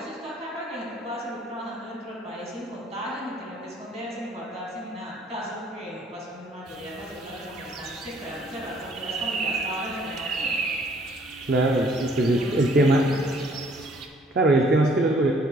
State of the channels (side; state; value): both; normal; correlation 0.60